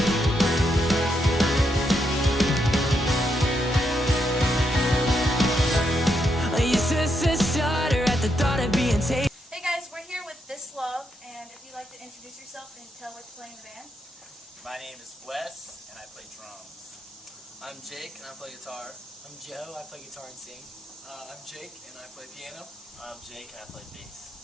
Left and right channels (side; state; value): both; normal; correlation 0.80